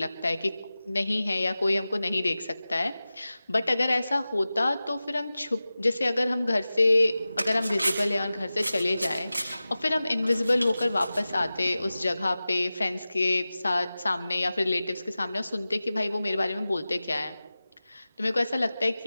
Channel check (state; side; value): inverted; both; correlation -0.96